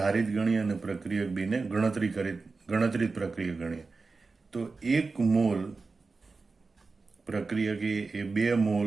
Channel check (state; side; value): quieter; left; 4.1 dB